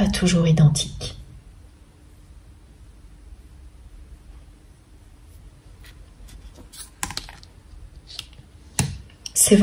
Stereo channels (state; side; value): identical; both; correlation 1.00